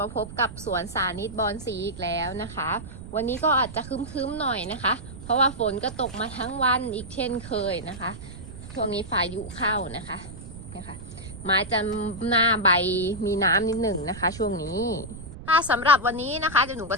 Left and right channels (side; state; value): right; noise; rumble, 13 dB below the sound